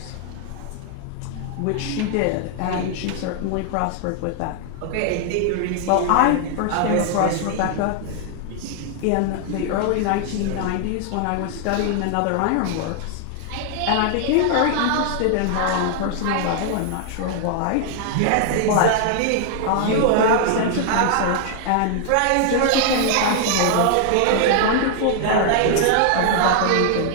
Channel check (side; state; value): both; different; correlation 0.00